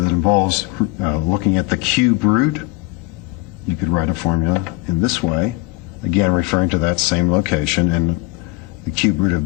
involves looking at the cube root, you could write a formula in this way, again referring to that same location, and the cube root of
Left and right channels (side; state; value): right; quieter; 21.1 dB